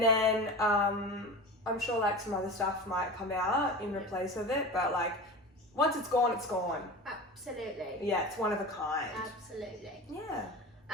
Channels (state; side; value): normal; both; correlation 0.31